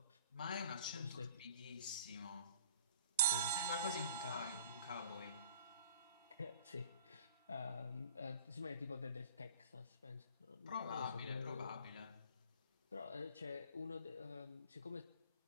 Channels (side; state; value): both; inverted; correlation -0.46